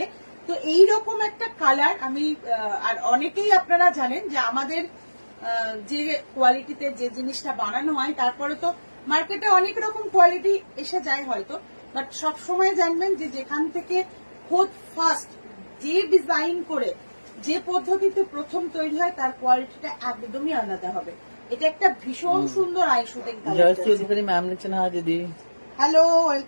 তো এইরকম একটা কালার আমি, আর অনেকেই আপনারা জানেন যে আমাদের যে কোয়ালিটিতে যে জিনিসটা বানানো হয়, তারপরে তো মার্কেটে অনেক রকম কোয়ালিটি এসে যায় হয়তো, বাট সব সময় জানবেন যে যেখান থেকে খোদ ফার্স্ট যে ডিজাইন করে যে পদ্ধতিতে প্রথম তৈরি হয় তার কোয়ালিটিটা একদমই আলাদা হবে। এটা একটা ভীষণ সুন্দর আই শুটিং কালার। ম্যাম লিখছেন হ্যাঁ দিদি, হ্যালো,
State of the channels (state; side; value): inverted; both; correlation -1.00